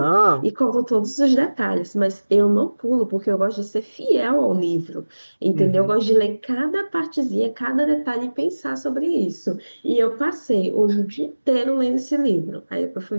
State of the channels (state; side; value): inverted; both; correlation -1.00